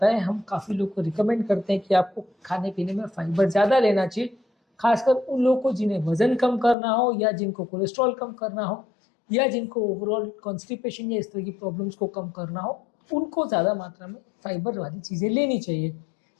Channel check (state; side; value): drops out; right; at 6.8 s